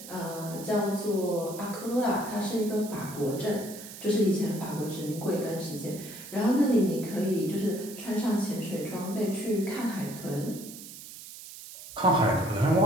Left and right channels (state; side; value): noise; right; hiss, 14 dB below the sound